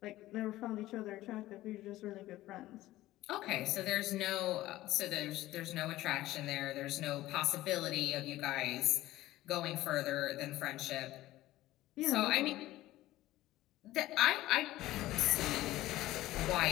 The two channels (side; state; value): right; quieter; 16.0 dB